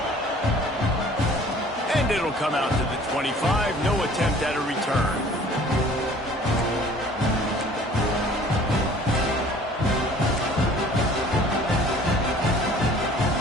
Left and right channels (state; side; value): normal; both; correlation 0.51